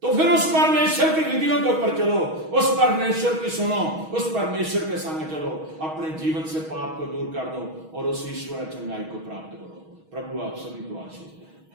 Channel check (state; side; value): late; left; 6.3 ms